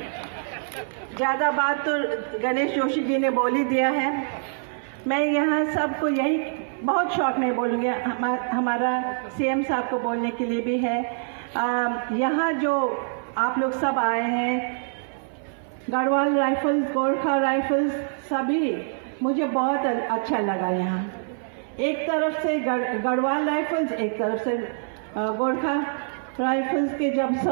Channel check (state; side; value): silent; left; 58 dB below the other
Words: ज्यादा बात तो गणेश जोशी जी ने बोल ही दिया है। मैं यहाँ सबको यही बहुत शौक में बोलूंगी, हमारा सीएम साहब को बोलने के लिए भी है। यहाँ जो आप लोग सब आए हैं, गढ़वाल राइफल्स, गोरखा राइफल्स, सभी मुझे बहुत अच्छा लगा। यहाँ एक तरफ से गढ़वाल राइफल्स, एक तरफ से गोरखा राइफल्स के जब